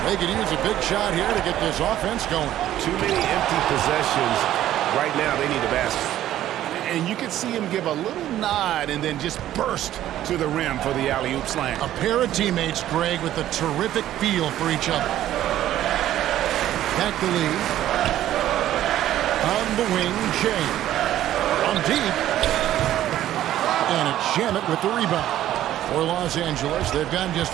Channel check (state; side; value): quieter; left; 12.8 dB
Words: They could use a big shot here to get this offense going. Too many empty possessions. Right now, they need a basket. And you can see him give a little nod and then just burst to the rim for the alley-oop slam. A pair of teammates, Greg, with a terrific feel for each other. Back to Lee. On the wing, Shea. On deep. And it's Shamet with the rebound. For Los Angeles, they've gotten just